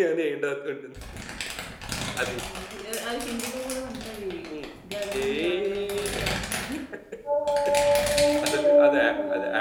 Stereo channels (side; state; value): both; identical; correlation 1.00